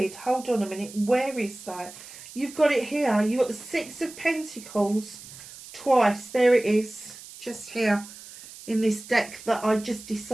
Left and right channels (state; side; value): noise; right; hiss, 16 dB below the sound